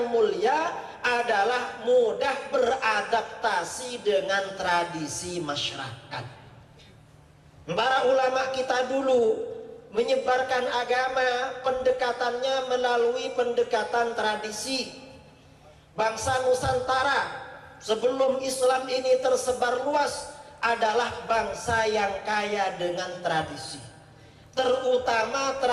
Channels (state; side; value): identical; both; correlation 1.00